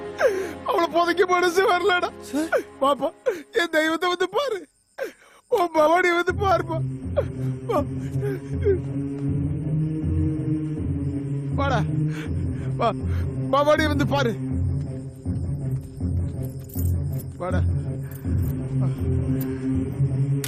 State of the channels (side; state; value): both; identical; correlation 1.00